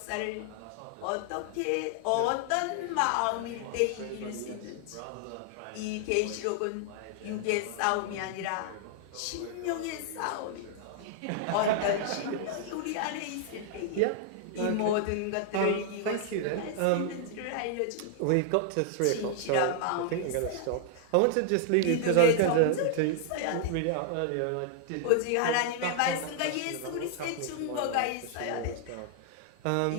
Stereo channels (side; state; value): both; different; correlation 0.00